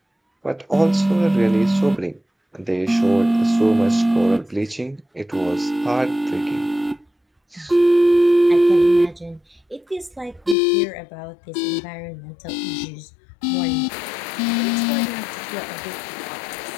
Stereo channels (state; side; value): drops out; right; at 10.6 s